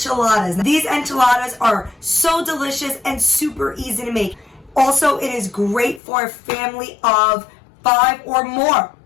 These enchiladas are so delicious and super easy to make. Also, it is great for a family of 5 or more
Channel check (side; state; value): right; drops out; at 6.0 s